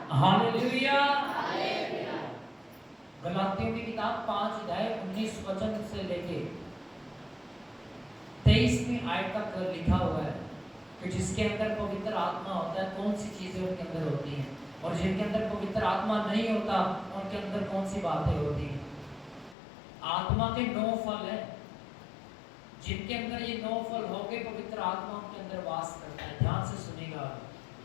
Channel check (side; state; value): right; drops out; at 19.6 s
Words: hallelujah. गलातियों की किताब 5 अध्याय 19 वचन से लेके 23वीं आयत तक लिखा हुआ है कि जिसके अंदर पवित्र आत्मा होता है, कौन सी चीजें उनके अंदर होती हैं, और जिनके अंदर पवित्र आत्मा नहीं होता, उनके अंदर कौन सी बातें होती हैं। आत्मा के 9 फल हैं, जिनके अंदर ये 9 फल होके पवित्र आत्मा उनके अंदर वास करता है। ध्यान से सुनिएगा,